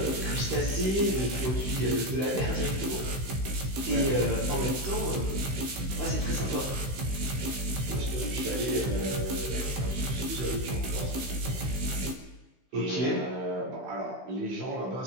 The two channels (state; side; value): late; left; 16 ms